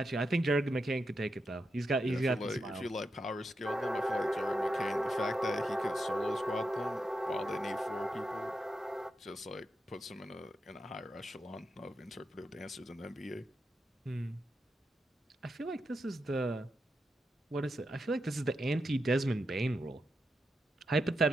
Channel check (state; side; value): normal; both; correlation 0.86